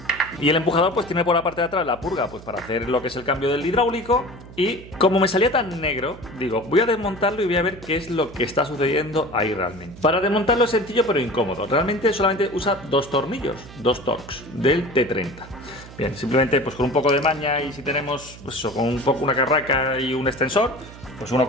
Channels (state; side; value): noise; right; hum, 17 dB below the sound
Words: Y el empujador pues tiene por la parte de atrás la purga pues para hacer lo que es el cambio del hidráulico. Y como me salía tan negro, digo, voy a desmontarlo y voy a ver qué es lo que está sucediendo ahí realmente. Para desmontarlo es sencillo pero incómodo. Realmente solamente usa dos tornillos, dos Torx del T30. Bien, simplemente pues con un poco de maña y si tenemos pues eso, con un poco una carraca y un extensor, pues uno